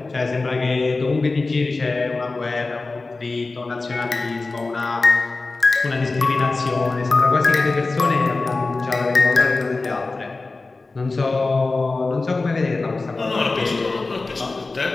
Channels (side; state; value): right; quieter; 3.6 dB